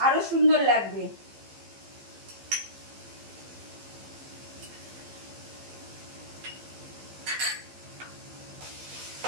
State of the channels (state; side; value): late; left; 15 ms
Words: আরো সুন্দর লাগবে।